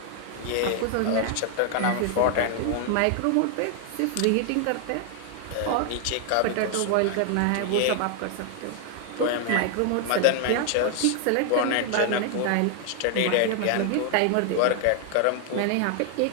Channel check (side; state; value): both; different; correlation 0.00